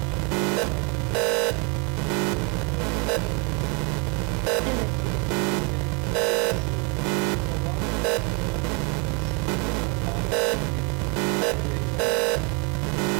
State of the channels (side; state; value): left; quieter; 32.7 dB